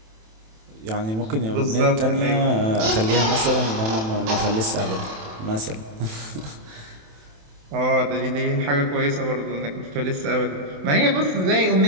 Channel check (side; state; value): left; late; 27 ms